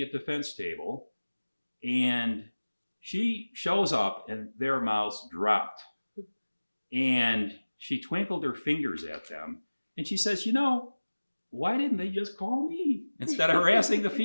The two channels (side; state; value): both; inverted; correlation -1.00